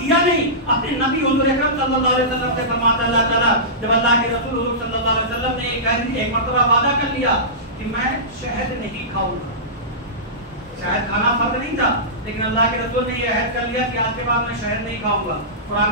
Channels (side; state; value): both; normal; correlation -0.19